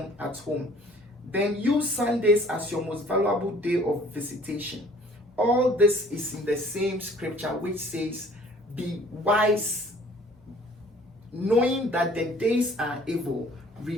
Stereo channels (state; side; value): normal; both; correlation 0.54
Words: at home. Then use Sundays as your most valuable day of visitation. All this is in the same scripture which says, be wise, knowing that the days are evil,